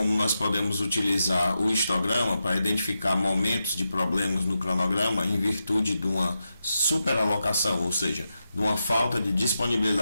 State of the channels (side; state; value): both; inverted; correlation -0.88